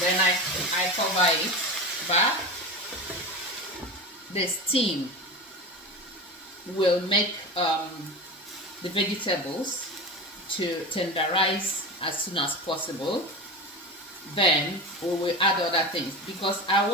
I cover it back. The steam will make the vegetables to tenderize as soon as possible. Then we will add other things, because I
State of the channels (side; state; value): both; normal; correlation 0.26